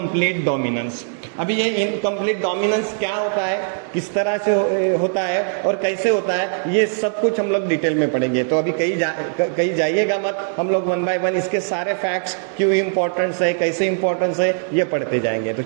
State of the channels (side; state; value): left; silent; digital silence